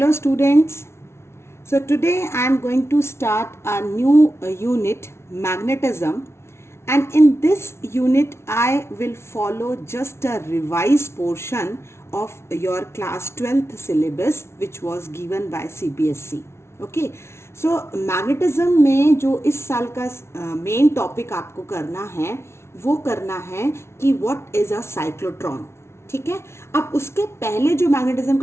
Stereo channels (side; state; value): right; late; 0.13 ms